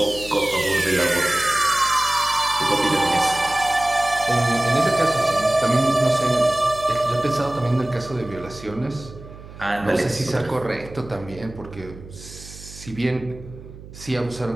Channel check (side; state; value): right; noise; hum, 16 dB below the sound